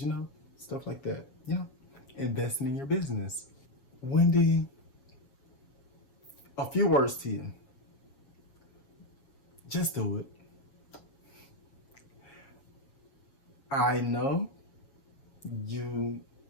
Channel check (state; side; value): late; right; 7.3 ms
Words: stuff like that. Investing in your business. Wendy, a few words to you. Just do it. I know you're